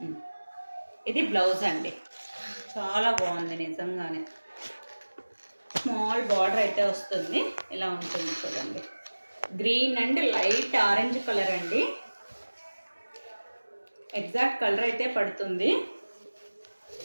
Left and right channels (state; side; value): inverted; both; correlation -1.00